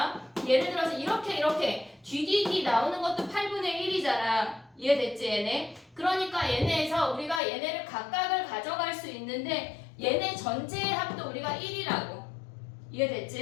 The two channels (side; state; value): right; drops out; at 7.4 s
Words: 예를 들어서 이렇게 뒤뒤뒤 나오는 것도 8분의 1이잖아. 이해됐지 얘네? 그러니까 얘네에서 우리가 얘네를 각각을 가져갈 수 있는데 얘네 전체의 합도 우리가 1이라고.